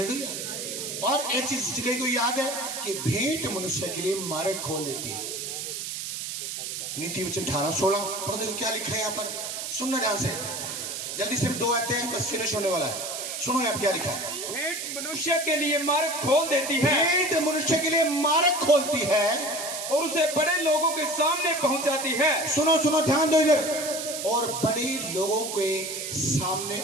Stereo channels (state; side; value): noise; right; hiss, 5 dB below the sound